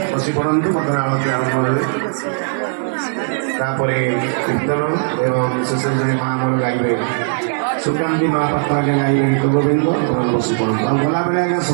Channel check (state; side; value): silent; left; 62 dB below the other